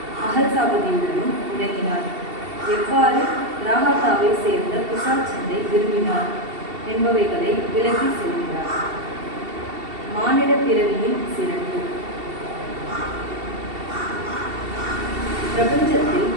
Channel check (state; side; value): late; left; 2.7 ms